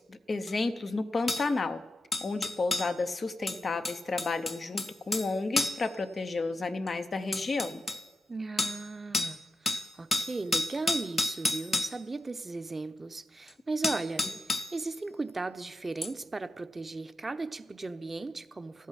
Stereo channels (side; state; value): both; normal; correlation 0.88